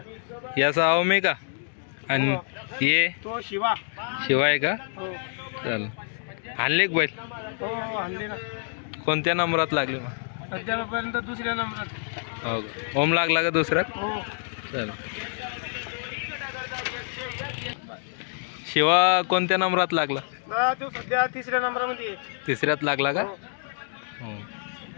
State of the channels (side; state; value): right; silent; 60 dB below the other